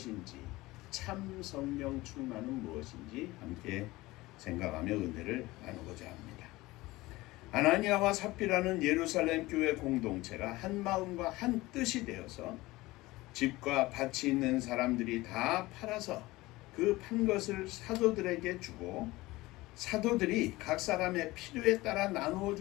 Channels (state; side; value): quieter; right; 19.6 dB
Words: 참 성령 충만은 무엇인지 함께 생각하며 은혜를 나누고자 합니다. 아나니아와 삽비라는 예루살렘 교회 공동체가 한 마음과 한 뜻이 되어서 집과 밭이 있는 사람들이 다 팔아서 그 판 것을 사도들에게 주고 사도들이 각 사람의 필요에 따라 나누어